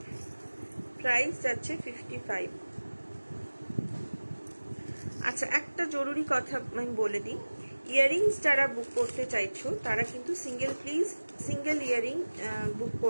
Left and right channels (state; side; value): inverted; both; correlation -1.00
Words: প্রাইস যাচ্ছে 55। আচ্ছা, একটা জরুরি কথা আমি বলে দিই, ইয়াররিংস যারা বুক করতে চাইছো তারা কিন্তু সিঙ্গেল ইয়াররিং বুক